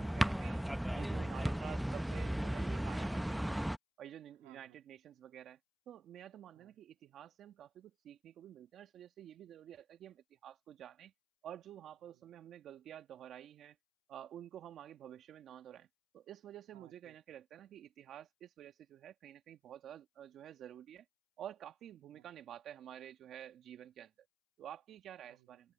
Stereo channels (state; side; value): normal; both; correlation 0.95